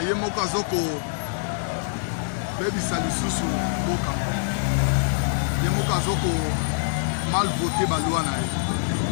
moko azoko baby salisusu boka. Ye moko azoko mal voté la loi.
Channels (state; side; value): silent; right; 62 dB below the other